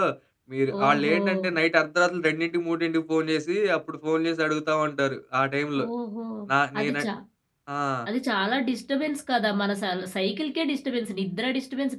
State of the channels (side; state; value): both; identical; correlation 1.00